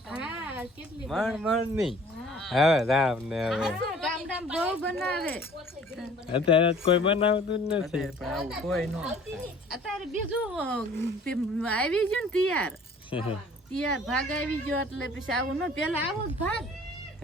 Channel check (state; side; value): normal; both; correlation 0.51